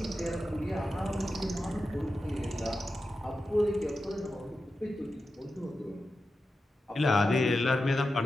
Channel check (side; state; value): both; normal; correlation 0.91